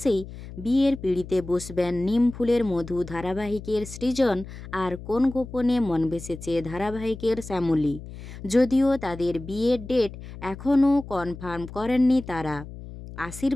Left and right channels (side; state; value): left; noise; hum, 13 dB below the sound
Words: বিয়ের পিঁড়িতে বসবেন নিম ফুলের মধু ধারাবাহিকের সৃজন আর কোন গোপনে মন ভেসেছে ধারাবাহিকের শ্যামলী। যদিও তাদের বিয়ের ডেট এখনও কনফার্ম করেননি তারা।